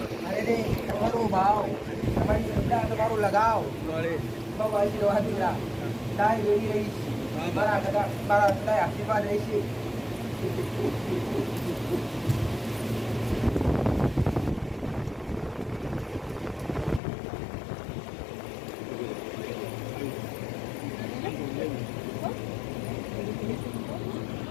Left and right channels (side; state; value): right; drops out; at 17.0 s